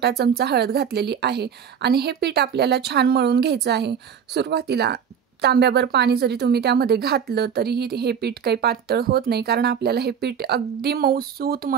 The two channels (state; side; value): quieter; left; 7.7 dB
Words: चमचा हळद घातलेली आहे आणि हे पीठ आपल्याला छान मळून घ्यायचं आहे। सुरुवातीला तांब्याभर पाणी जरी तुम्ही त्यामध्ये घातलं तरीही हे पीठ काही पातळ होत नाही, कारण आपल्याला हे पीठ अगदी मऊसूत